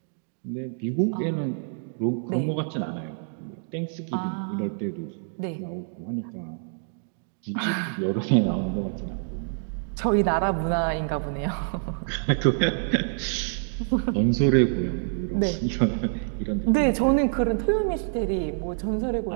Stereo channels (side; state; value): left; silent; digital silence